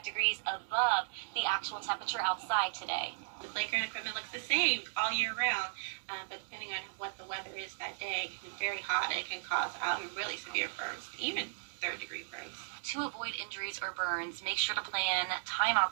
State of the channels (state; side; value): silent; left; digital silence